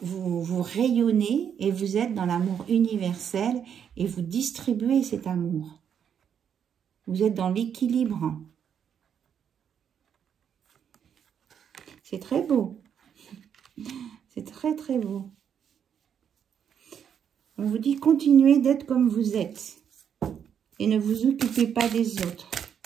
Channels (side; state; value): left; quieter; 8.2 dB